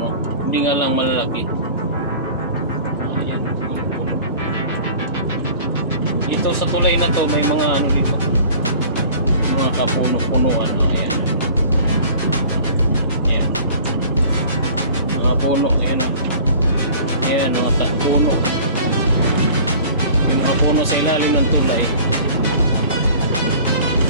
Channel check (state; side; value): inverted; both; correlation -0.45